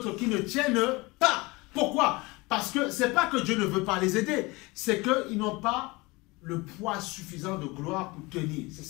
qui ne tiennent pas. Pourquoi? Parce que ce n'est pas que Dieu ne veut pas les aider, c'est qu'ils n'ont pas le poids suffisant de gloire pour tenir. C'est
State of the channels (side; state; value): right; quieter; 23.8 dB